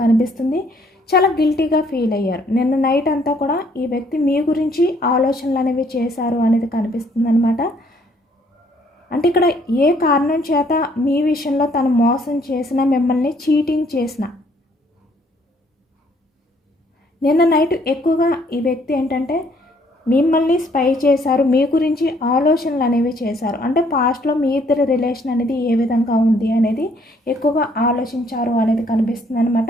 కనిపిస్తుంది. చాలా గిల్టీగా ఫీల్ అయ్యారు. నిన్న నైట్ అంతా కూడా ఈ వ్యక్తి మీ గురించి ఆలోచనలు అనేవి చేశారు అనేది కనిపిస్తుంది అనమాట. అంటే ఇక్కడ ఏ కారణం చేత మీ విషయంలో తను మోసం చేసినా, మిమ్మల్ని చీటింగ్ చేసిన, నిన్న నైట్ ఎక్కువగా ఈ వ్యక్తి ఏంటంటే మిమ్మల్ని స్పై చేశారు, మీ గురించి ఆలోచనలు అనేవి చేశారు. అంటే పాస్ట్లో మీ ఇద్దరి రిలేషన్ అనేది ఏ విధంగా ఉంది అనేది ఎక్కువగా ఆలోచించారు అనేది కనిపిస్తుంది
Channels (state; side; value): normal; both; correlation 0.65